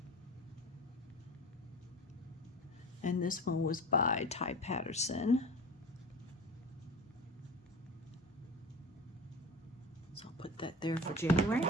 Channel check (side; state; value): both; normal; correlation 0.33